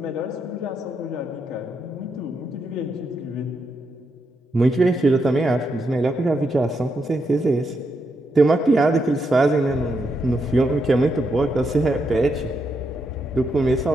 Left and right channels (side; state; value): both; normal; correlation 0.81